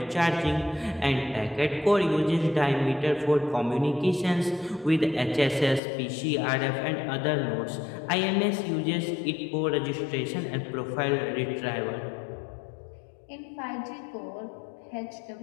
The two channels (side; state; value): right; drops out; at 5.8 s